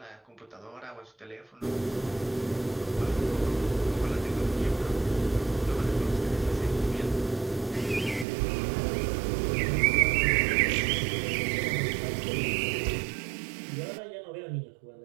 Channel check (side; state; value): left; drops out; at 8.2 s